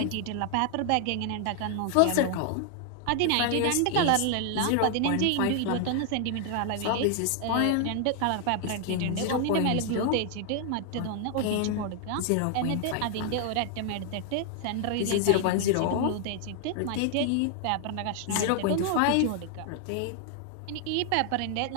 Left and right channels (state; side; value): different; both; correlation 0.00